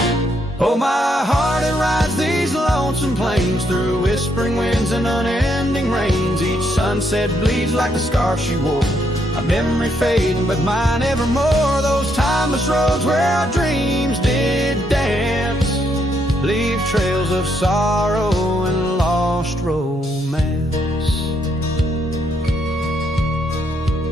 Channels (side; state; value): both; normal; correlation 0.75